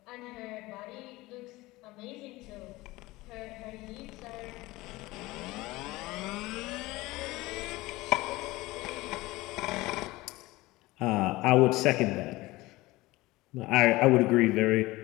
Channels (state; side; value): quieter; right; 19.9 dB